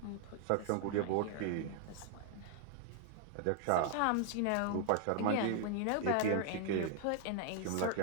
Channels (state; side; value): different; both; correlation 0.00